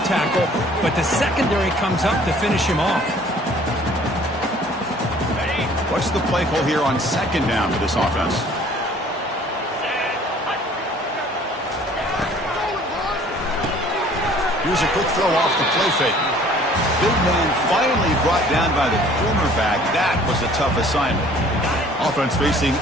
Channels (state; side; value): normal; both; correlation 0.54